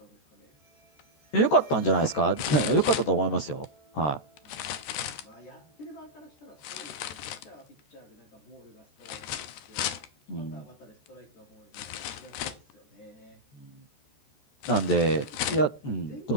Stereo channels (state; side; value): late; right; 14 ms